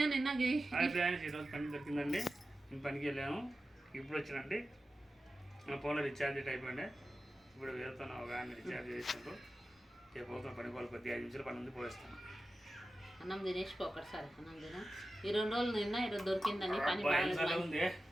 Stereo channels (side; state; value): both; normal; correlation 0.93